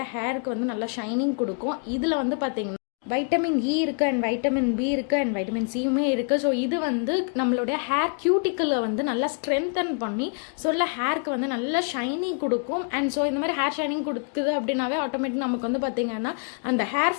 ஹேருக்கு வந்து நல்லா ஷைனிங் கொடுக்கும். இதில் வந்து பார்த்திங்கன்னா வைட்டமின் இ இருக்குது அண்ட் வைட்டமின் பி இருக்குது அண்ட் வைட்டமின் சியுமே இருக்குது. ஸோ இது வந்து நம்மளுடைய ஹேர் கியூட்டிக்கில் வந்து நல்லா ஸ்ட்ரென்தன் பண்ணி சொல்ல ஹேருக்கு வந்து நல்ல ஷைனிங் கொடுக்கும். அண்ட் ஸோ இந்த மாதிரி ஹேர் ஷைனிங் கொடுக்குது அப்படின்னாவே ஆட்டோமேட்டிக் நமக்கு வந்து பார்த்திங்கன்னா அந்த ஹேர்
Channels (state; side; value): quieter; right; 38.8 dB